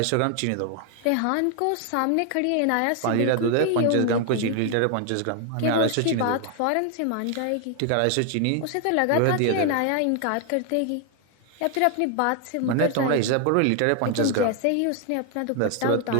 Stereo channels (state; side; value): different; both; correlation 0.00